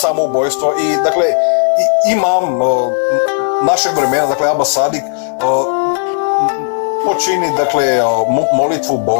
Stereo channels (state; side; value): silent; right; digital silence